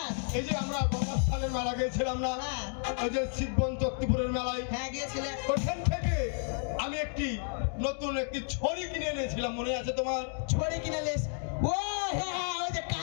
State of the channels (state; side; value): silent; right; 57 dB below the other